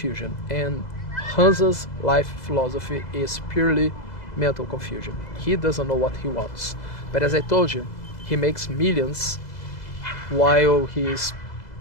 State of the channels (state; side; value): late; right; 2.0 ms